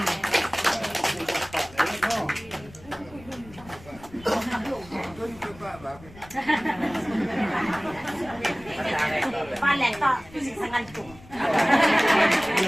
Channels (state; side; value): noise; left; rumble, 21 dB below the sound